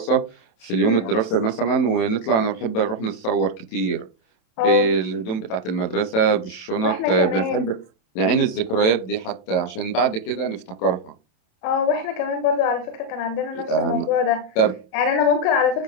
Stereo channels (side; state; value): right; late; 27 ms